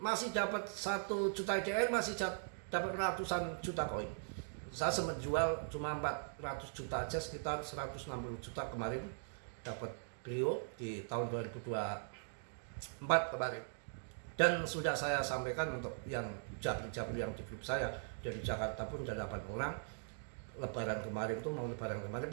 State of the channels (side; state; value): left; silent; digital silence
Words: dapat 1 juta IDR, masih dapat ratusan juta koin. Saya sempat jual cuma 400 juta aja, sekitar 160 juta kemarin dapat beliau di tahun 2024 kemarin. Dan sudah saya sampaikan untuk yang jabri yang di grup saya dari Jakarta pun ada 8 orang. Lebaran kemarin